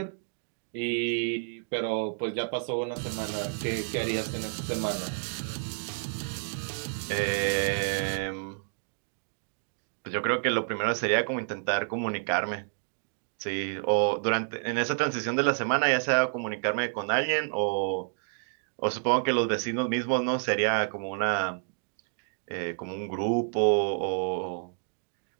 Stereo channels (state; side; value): silent; left; digital silence